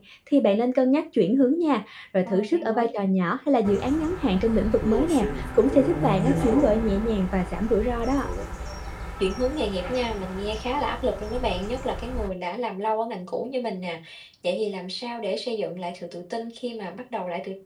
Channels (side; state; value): both; identical; correlation 1.00